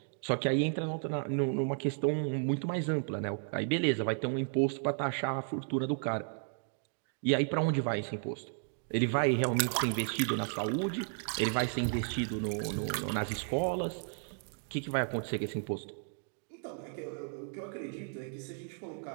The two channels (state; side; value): silent; left; 55 dB below the other